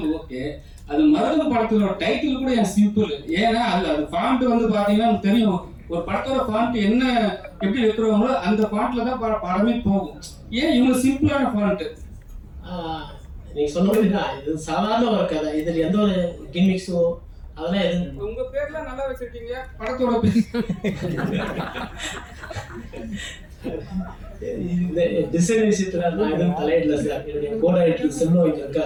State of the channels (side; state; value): both; identical; correlation 1.00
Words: ஓகே. அது மருத படத்தோட டைட்டில் கூட என் சிம்பிள். ஏன்னா அது ஃபாண்ட் வந்து பார்த்தீங்கன்னா எனக்கு தெரியும், ஒரு படத்தோட ஃபாண்ட் என்ன எப்படி வைக்கிறவங்களோ அந்த ஃபாண்ட்ல தான் படமே போகும். ஏன் இவங்க சிம்பிளான ஃபாண்ட்? நீங்க சொன்ன மாதிரி தான், இது சாதாரண ஒரு கதை. இதில் எந்த ஒரு கிமிக்ஸோ அதெல்லாம் எதுவும். உங்க பேர்லாம் நல்லா வச்சிருக்கீங்க, படத்தோட பேர் இந்த டிசைன் விஷயத்துல நான் எதுவும் தலையிடல சார். என்னுடைய கோடைரக்டர் செல்வம் இங்க